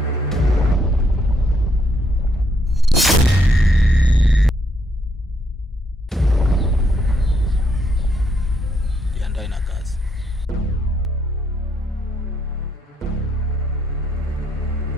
Jiandae na kazi.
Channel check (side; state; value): both; normal; correlation 0.74